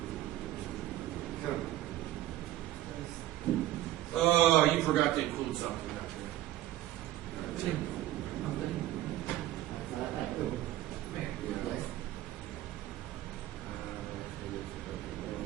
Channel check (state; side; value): quieter; left; 14.5 dB